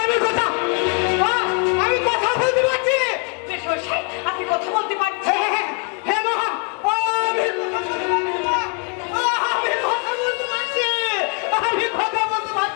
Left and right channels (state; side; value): quieter; right; 38.6 dB